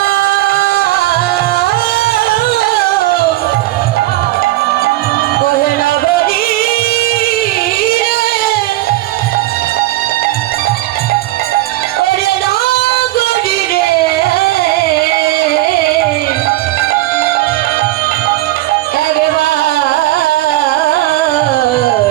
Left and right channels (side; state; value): left; quieter; 16.8 dB